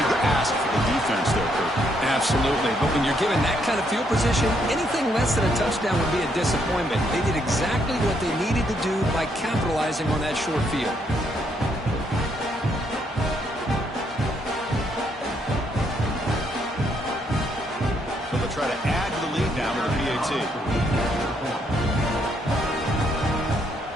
ask for the defense there, Kurt. Absolutely. But when you're given that kind of field position, anything less than a touchdown would be a disappointment. They did exactly what they needed to do by capitalizing on that short field. So they'll try to add to the lead now with a PAT.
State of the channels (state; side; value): normal; both; correlation 0.73